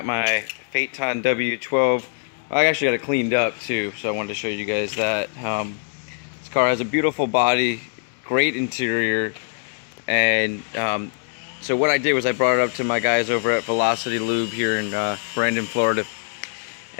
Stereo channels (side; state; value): right; silent; 64 dB below the other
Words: my Phaeton w12. I actually got it cleaned up too, so I wanted to show you guys that. This car has a beautiful body, great interior, and so what I did was I brought it up to my guys over at Velocity Lube here in Brandon, Florida,